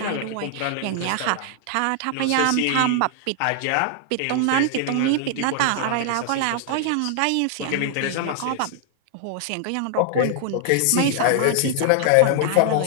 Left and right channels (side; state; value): both; different; correlation 0.00